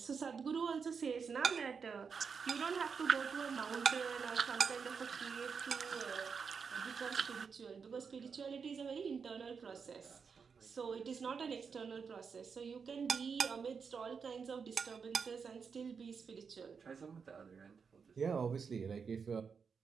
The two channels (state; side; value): quieter; left; 5.9 dB